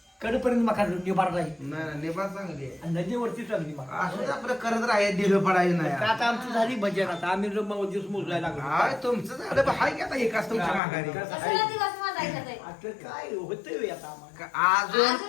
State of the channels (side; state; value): right; drops out; at 10.8 s